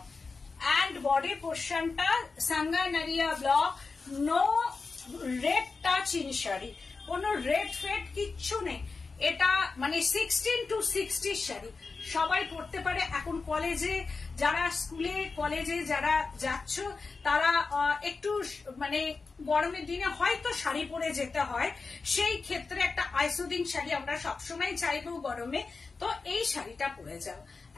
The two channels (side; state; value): right; quieter; 4.3 dB